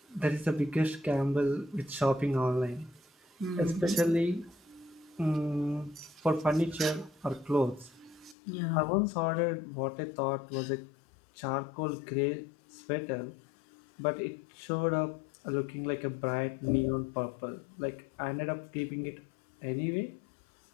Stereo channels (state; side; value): drops out; right; at 8.3 s